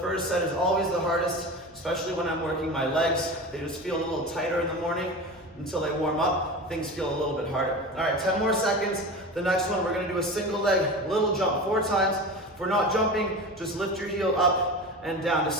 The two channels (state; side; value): normal; both; correlation 0.30